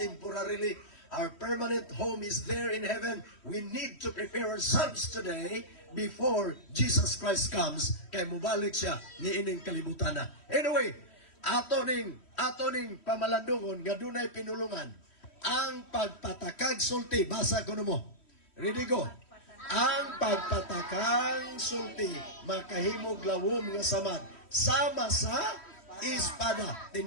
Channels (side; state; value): right; late; 3.1 ms